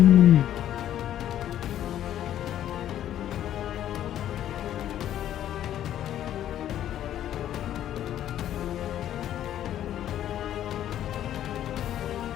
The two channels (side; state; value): right; quieter; 11.4 dB